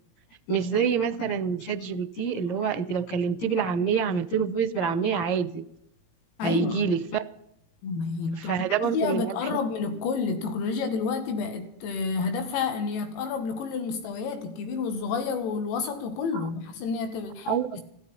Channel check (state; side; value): late; right; 18 ms